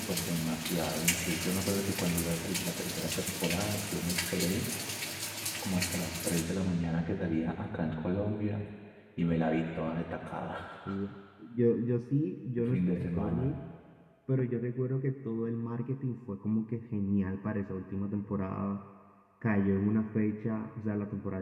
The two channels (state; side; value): identical; both; correlation 1.00